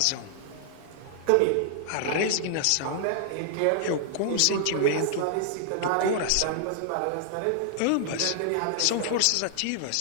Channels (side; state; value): both; different; correlation -0.01